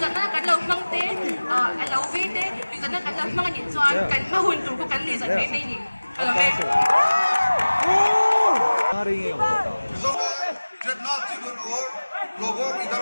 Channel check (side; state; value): both; inverted; correlation -1.00